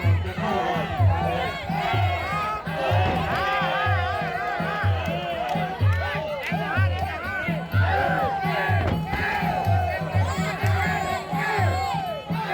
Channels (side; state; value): both; identical; correlation 1.00